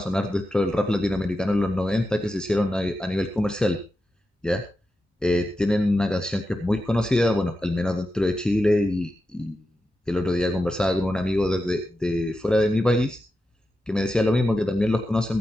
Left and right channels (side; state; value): both; normal; correlation 0.89